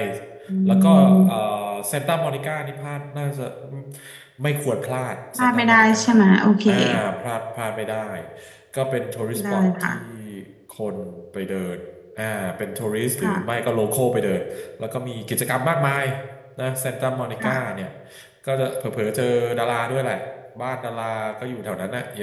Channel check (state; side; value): identical; both; correlation 1.00